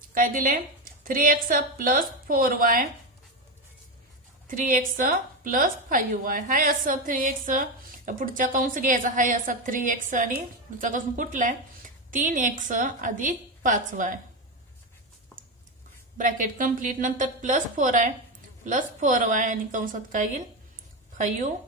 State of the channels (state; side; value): normal; both; correlation 0.13